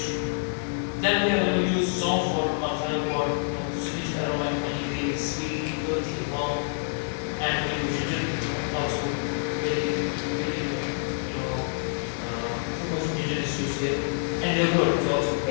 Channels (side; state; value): right; silent; 60 dB below the other